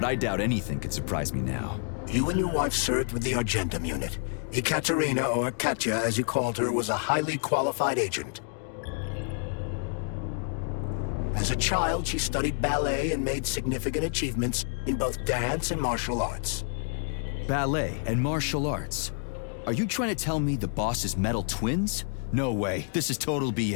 I doubt anything could surprise me now. You and your wife served with the Argentum unit. Ekaterina, or Katya as you called her, was a highly qualified agent. As a child, she studied ballet and made significant achievements in both dance and martial arts. Ballet and martial arts? Are you trying to tell me the boss is metal twins? No way. This is total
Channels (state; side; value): silent; right; 57 dB below the other